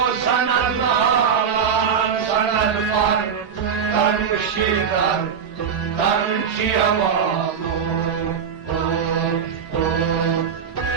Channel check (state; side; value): quieter; left; 7.1 dB